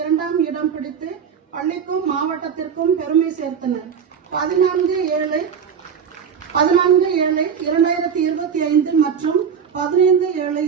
2ஆம் இடம் பிடித்து பள்ளிக்கும் மாவட்டத்திற்கும் பெருமை சேர்த்தனர். 14/7/2025 மற்றும்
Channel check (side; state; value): left; quieter; 7.1 dB